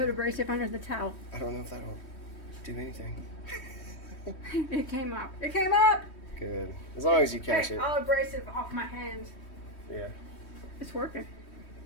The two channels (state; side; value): late; right; 3.1 ms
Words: abrasive under the towel? I don't know if that'll do anything. It came up. It came up! Good. As long as you catch Hey, it. I'll abrasive off my hands. Yeah. It's working.